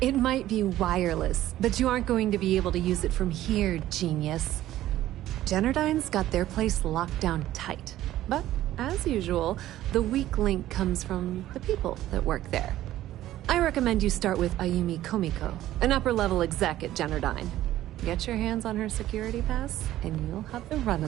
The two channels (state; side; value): quieter; left; 14.0 dB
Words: might be wireless, but you aren't going to be able to use it from here, genius. Generdyne's got their place locked down tight. But, as usual, the weak link comes from the people that work there. I recommend you start with Ayumi Komiko, an upper-level exec at Generdyne. Get your hands on her security pass, and you'll have the run